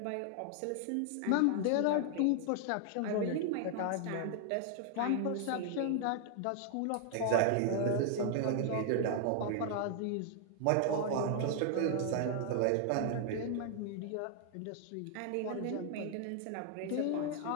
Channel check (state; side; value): different; both; correlation 0.00